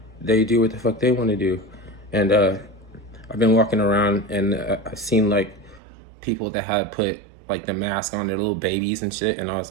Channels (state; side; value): drops out; left; at 5.8 s